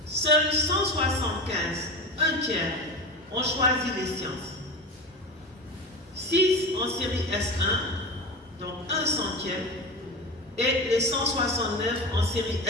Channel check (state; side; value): normal; both; correlation 0.27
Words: seuls 175, un tiers, ont choisi les sciences. 6 en série S1, donc 1/100, et les 169 en série